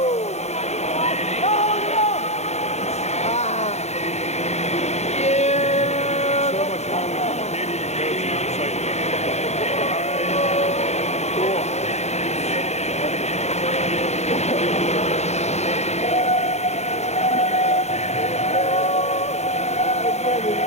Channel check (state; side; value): late; right; 0.32 ms